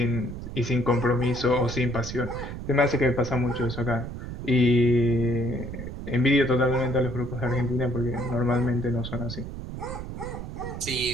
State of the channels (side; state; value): right; noise; rumble, 8 dB below the sound